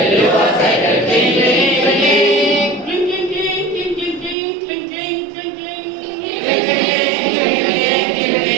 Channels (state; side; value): drops out; left; at 4.4 s